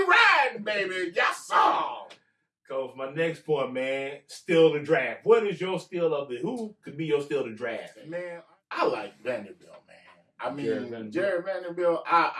riding, baby. Yes, sir. Coach, my next point, man, steal the draft. What is your steal of the? Who could be your steal the draft? Man, I like Vanderbilt, man. I mean, Jared Vanderbilt.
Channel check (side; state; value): both; identical; correlation 1.00